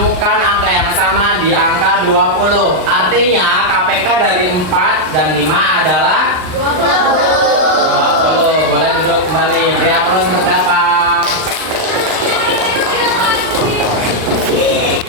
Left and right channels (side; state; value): left; late; 39 ms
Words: angka yang sama di angka 20. Artinya KPK dari 4 dan 5 adalah 20. Boleh duduk kembali. Beri aplaus untuk dapat.